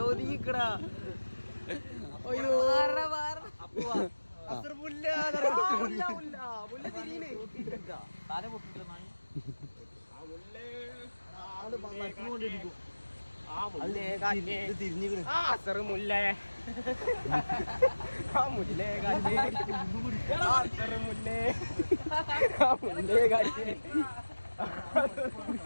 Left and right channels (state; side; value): inverted; both; correlation -1.00